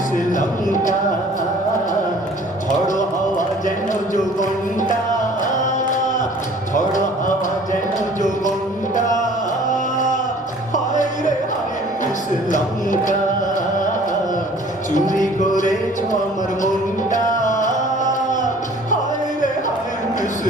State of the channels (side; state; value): both; normal; correlation 0.51